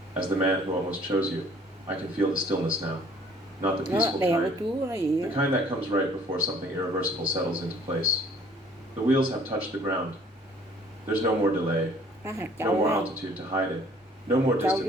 As the man who almost chose you, I can feel the stillness now. Not the peaceful kind. The kind that comes right before something irreversible settles into place. The wheels have touched the ground. There's no more delay. No more altitude to hide it. No more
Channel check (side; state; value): both; normal; correlation 0.56